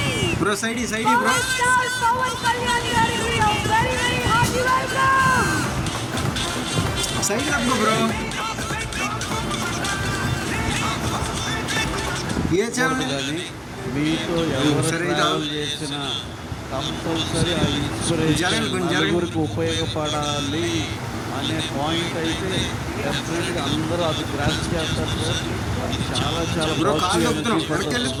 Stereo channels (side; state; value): both; identical; correlation 1.00